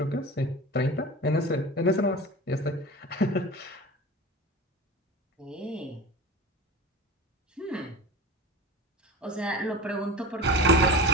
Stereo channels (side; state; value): both; normal; correlation 0.32